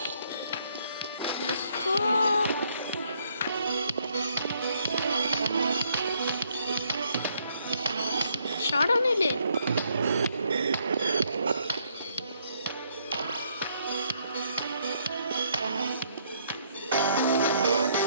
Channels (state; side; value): inverted; both; correlation -0.69